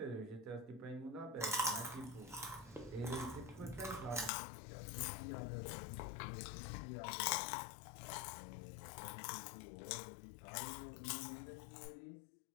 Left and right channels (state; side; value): drops out; right; at 4.3 s